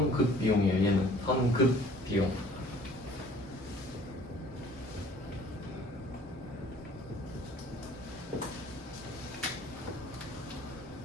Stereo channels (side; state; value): both; normal; correlation 0.53